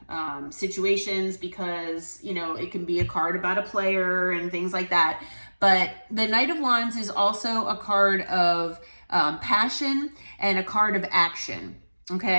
situations because, you know, it can be a card about a player and things like that. But the Knight of Wands is also a card of passion and a card of action,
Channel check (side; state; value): both; inverted; correlation -1.00